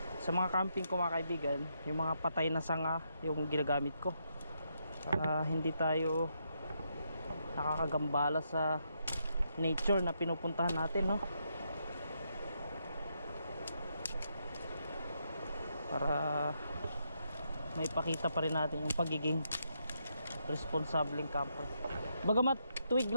sa mga camping ko mga kaibigan, yung mga patay na sanga yung ginagamit ko para hindi tayo nakakagambala sa nature na pinupuntahan natin, no? Para may pakita pa rin natin yung pagiging responsableng camper. Bagamat tuwig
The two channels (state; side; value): inverted; both; correlation -0.79